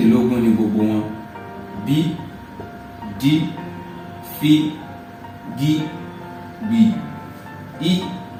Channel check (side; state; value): both; identical; correlation 1.00